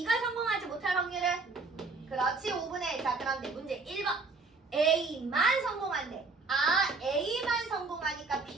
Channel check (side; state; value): left; quieter; 4.1 dB